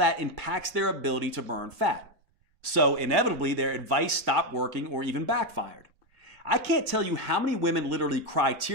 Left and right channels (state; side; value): late; left; 1.9 ms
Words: impacts their ability to burn fat. So inevitably, their advice stopped working or even backfired. I can't tell you how many women literally cry